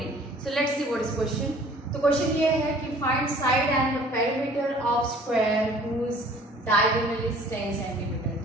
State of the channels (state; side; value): normal; both; correlation 0.52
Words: So let's see what is question. तो question ये है कि find side and the perimeter of square whose diagonal is 10 cm.